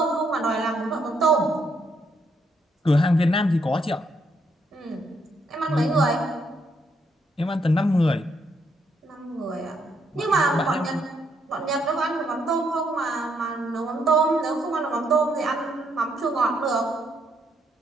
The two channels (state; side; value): normal; both; correlation 0.74